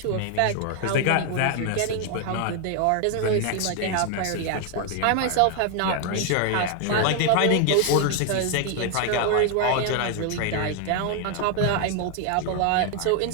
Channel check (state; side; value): different; both; correlation 0.00